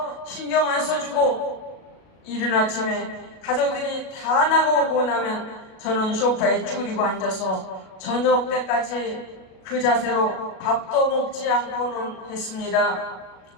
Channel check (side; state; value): right; late; 37 ms